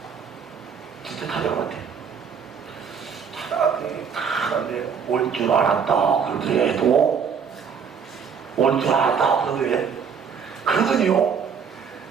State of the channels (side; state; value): left; quieter; 6.6 dB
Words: 진짜 찾아갔대. 찾아갔더니 올 줄 알았다 그러더래도, 올 줄 알았다 그러더래. 그러더니요,